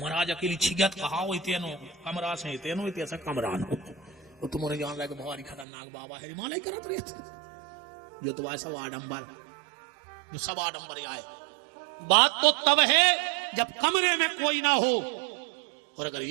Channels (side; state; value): left; drops out; at 5.7 s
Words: अकेली छिगत कहा हो, इतनो कमरा से इतनो इतने कमरान हो, और तुम्हारे जान रहा है कि बहुत खतरनाक बाबा है, हिमालय करत रही जो तुम्हारे सब आडम्बर, सब आडम्बर आए। बात तो तब है जब कमरे में कोई ना हो, और अगर